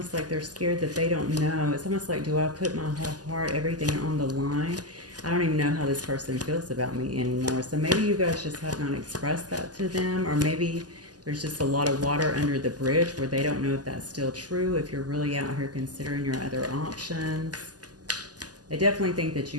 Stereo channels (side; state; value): left; late; 0.68 ms